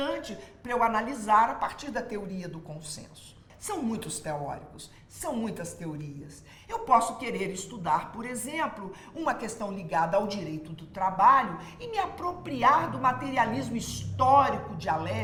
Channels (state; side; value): identical; both; correlation 1.00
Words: para eu analisar a partir da teoria do consenso. São muitos teóricos, são muitas teorias. Eu posso querer estudar, por exemplo, uma questão ligada ao direito do trabalho e me apropriar do materialismo histórico